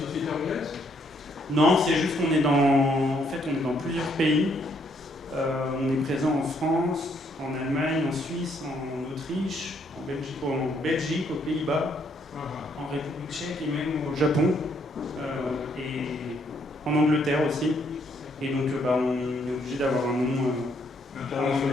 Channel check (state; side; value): normal; both; correlation 0.70